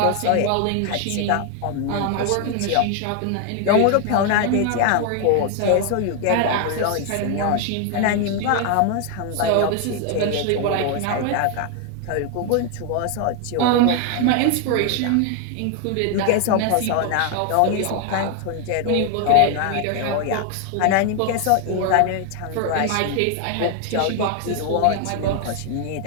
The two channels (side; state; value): both; different; correlation 0.00